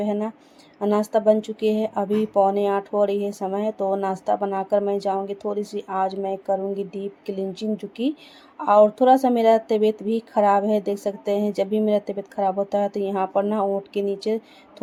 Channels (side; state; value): both; identical; correlation 1.00